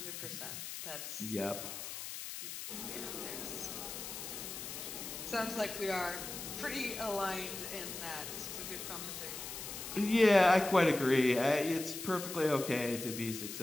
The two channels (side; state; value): left; noise; hiss, 8 dB below the sound